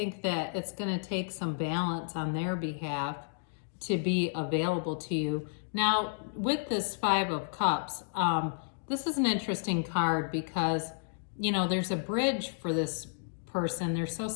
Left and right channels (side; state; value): right; silent; digital silence